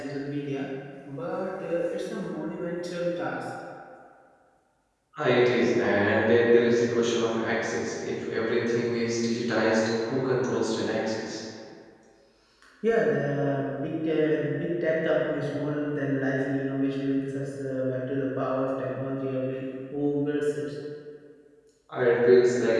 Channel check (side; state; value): both; identical; correlation 1.00